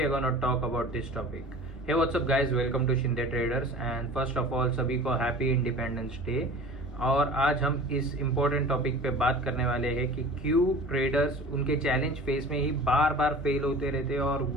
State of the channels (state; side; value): normal; both; correlation 0.41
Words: going to talk about this topic. Hey, what's up guys, welcome to Shinde Traders and first of all सभी को happy independence day. और आज हम इस important topic पे बात करने वाले हैं कि क्यों ट्रेडर्स उनके चैलेंज फेस में ही बार बार फेल होते रहते हैं और